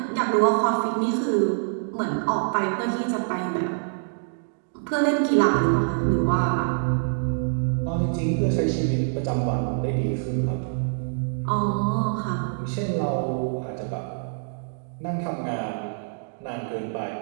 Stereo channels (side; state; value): left; silent; digital silence